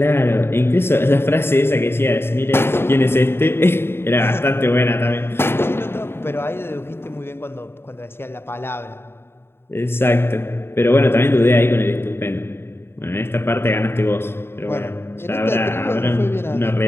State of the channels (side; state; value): right; late; 0.11 ms